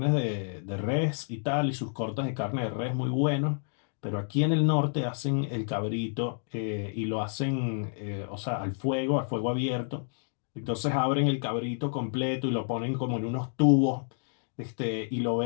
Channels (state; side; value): silent; right; digital silence